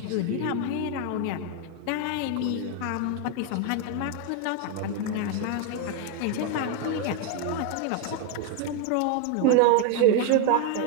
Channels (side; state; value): both; different; correlation 0.01